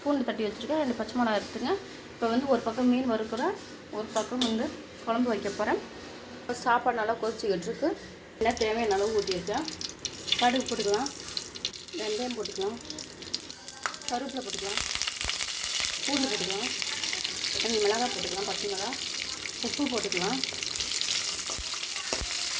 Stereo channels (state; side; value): identical; both; correlation 1.00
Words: பூண்டு தட்டி வச்சுருக்கேன், 2 பச்சை மிளகா எடுத்துங்க. இப்போ வந்து ஒரு பக்கம் மீன் வறுக்கிறேன், ஒரு பக்கம் வந்து குழம்பு வைக்க போகிறேன். இப்போ சாப்பாடு நல்லா கொதிச்சுக்கிட்டு இருக்கு. என்ன தேவையான அளவு ஊற்றிருக்கேன். கடுகு போட்டுக்கலாம், வெந்தயம் போட்டுக்கலாம், கருவேப்பிலை போட்டுக்கலாம், பூண்டு போட்டுக்கலாம், 2 மிளகாய் போட்டுக்கலாம், பச்சை மிளகாய், உப்பு போட்டுக்கலாம்,